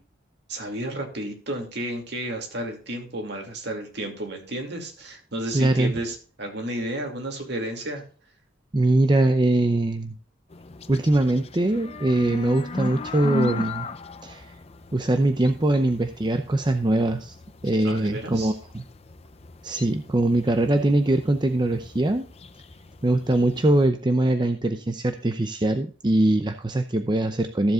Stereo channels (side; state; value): both; normal; correlation 0.83